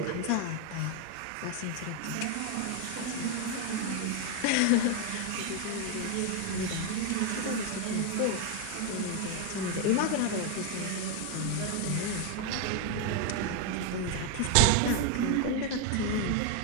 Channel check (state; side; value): different; both; correlation 0.01